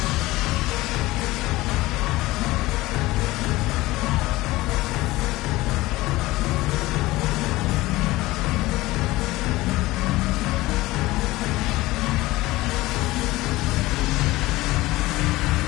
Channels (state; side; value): quieter; right; 18.9 dB